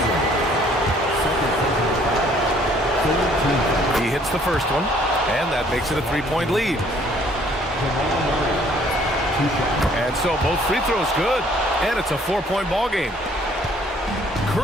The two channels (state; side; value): normal; both; correlation 0.60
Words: He hits the first one, and that makes it a 3-point lead. And so both free throws good, and it's a 4-point ball game.